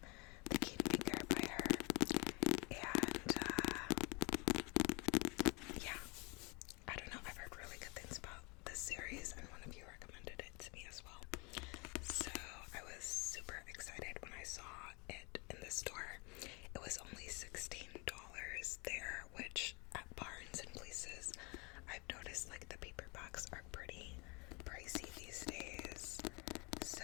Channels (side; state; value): right; quieter; 29.6 dB